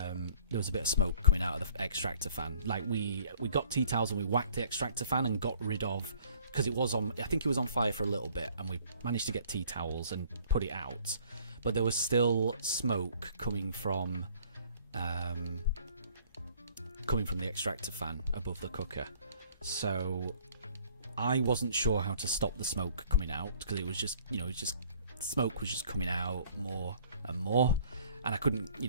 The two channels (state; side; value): inverted; both; correlation -0.56